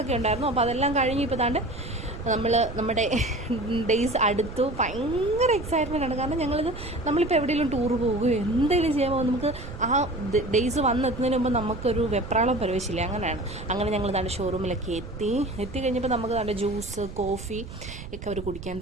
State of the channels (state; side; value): noise; right; rumble, 12 dB below the sound